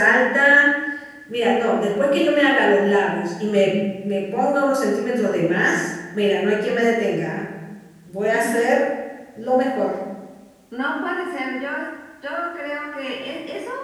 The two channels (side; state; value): both; identical; correlation 1.00